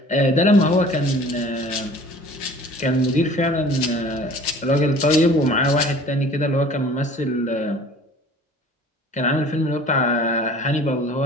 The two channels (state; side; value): normal; both; correlation 0.47